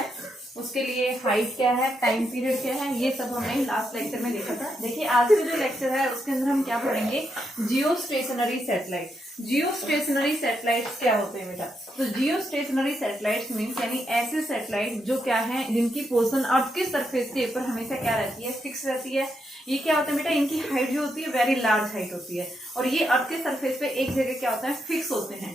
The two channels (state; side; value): normal; both; correlation 0.81